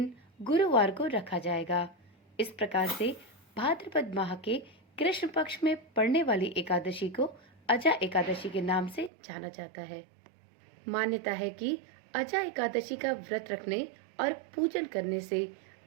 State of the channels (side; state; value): left; drops out; at 9.1 s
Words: गुरुवार को रखा जाएगा। इस प्रकार से भाद्रपद माह के कृष्ण पक्ष में पड़ने वाली एकादशी को अचा एकादशी के नाम से जाना जाता है। मान्यता है कि अचा एकादशी का व्रत रखने और पूजन करने से